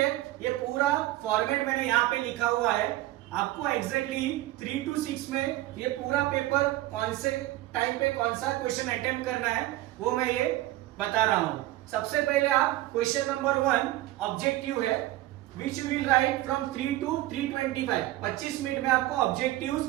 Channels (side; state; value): left; quieter; 16.3 dB